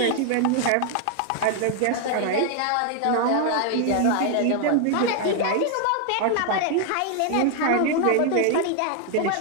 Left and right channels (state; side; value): different; both; correlation 0.00